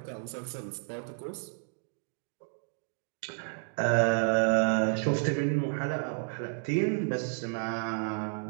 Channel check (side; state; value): left; silent; 57 dB below the other